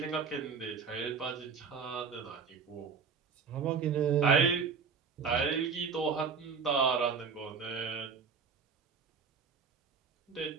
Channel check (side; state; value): left; quieter; 5.8 dB